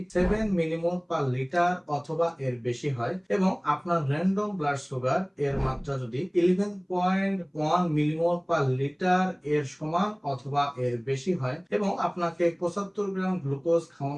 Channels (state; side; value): identical; both; correlation 1.00